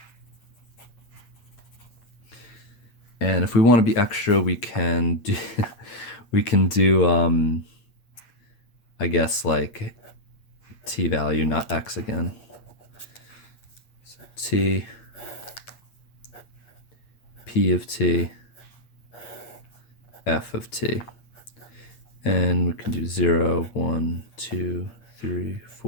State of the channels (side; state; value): right; late; 8.6 ms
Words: And if we want to be extra, we can do I guess like t value, not x again. So t, p of t, f of t. And we can do 0, 1, 2, 3,